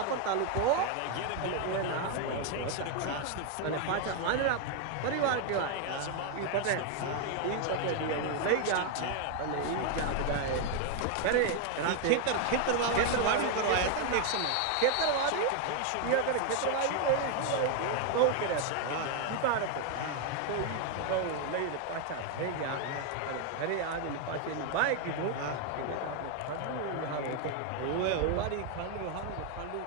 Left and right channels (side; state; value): both; different; correlation 0.01